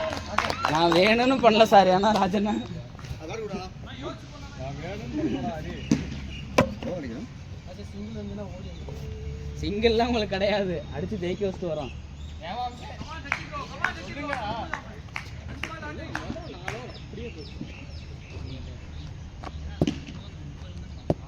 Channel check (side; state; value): both; identical; correlation 1.00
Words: நான் வேணும்னு பண்ணல சார். ஏன்னா ராஜண்ணா சிங்கிள்லாம் உங்களுக்கு கிடையாது. அடிச்சு ஜெயிக்க வச்சுட்டு வரோம்.